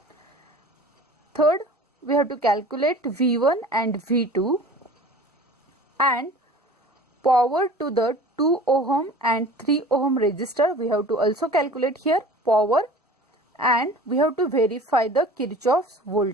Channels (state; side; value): normal; both; correlation 0.42